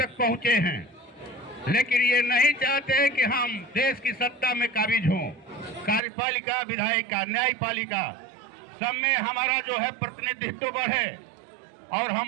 पहुंचे हैं। लेकिन ये नहीं चाहते कि हम देश की सत्ता में काबिज हों। कार्यपालिका, विधायिका, न्यायपालिका सब में हमारा जो है प्रतिनिधित्व बढ़े, और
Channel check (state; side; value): drops out; left; at 6.0 s